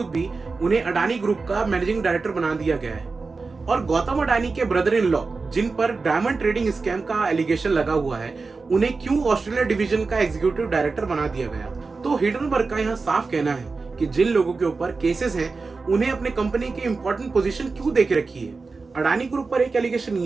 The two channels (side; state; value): left; quieter; 4.2 dB